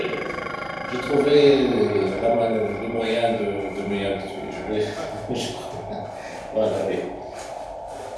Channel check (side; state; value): both; identical; correlation 1.00